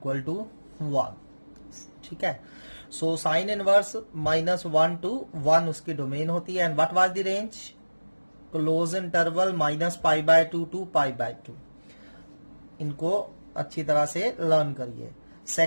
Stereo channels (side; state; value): both; inverted; correlation -1.00